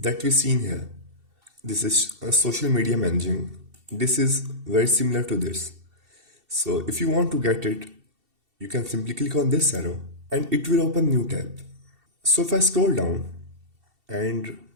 we seen here. This is social media managing. This is very similar to this. So if you want to get it, you can simply click on this arrow and it will open new tab. So if I scroll down, and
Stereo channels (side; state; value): left; late; 2.7 ms